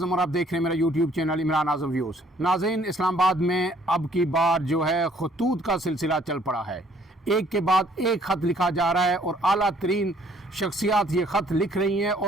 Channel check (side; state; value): both; normal; correlation 0.62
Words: और आप देख रहे हैं मेरा यूट्यूब चैनल इमरान आज़म व्यूज़। नाज़रीन, इस्लामाबाद में अब की बार जो है खतूत का सिलसिला चल पड़ा है। एक के बाद एक ख़त लिखा जा रहा है और आला तरीन शख्सियात ये ख़त लिख रही हैं